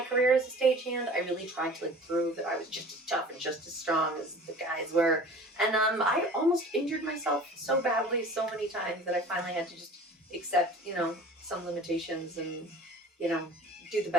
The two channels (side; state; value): both; normal; correlation 0.43